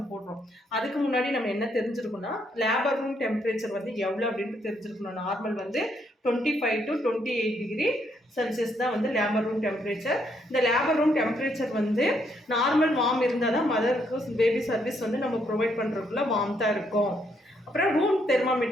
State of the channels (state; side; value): normal; both; correlation 0.74